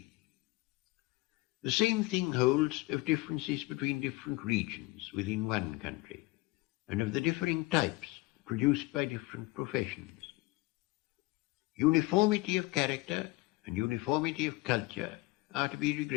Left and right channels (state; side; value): quieter; right; 21.4 dB